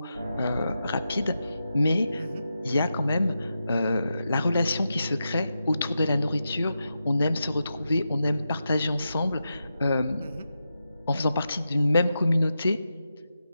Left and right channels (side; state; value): both; inverted; correlation -0.89